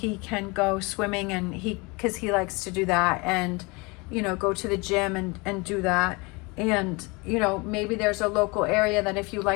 can go swimming, and because he likes to do that, and, you know, go to the gym and do that. And, you know, maybe there's a local area that if you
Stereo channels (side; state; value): right; quieter; 27.0 dB